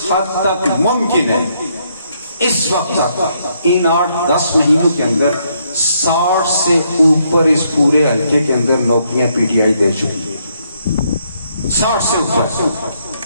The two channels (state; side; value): inverted; both; correlation -0.73